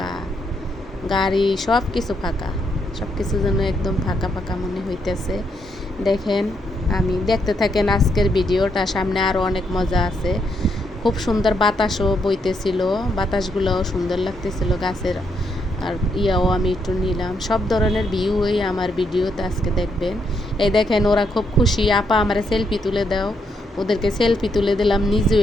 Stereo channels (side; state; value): both; normal; correlation 0.77